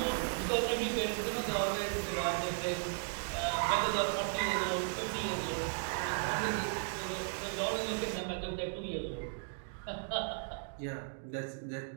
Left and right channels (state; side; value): silent; left; digital silence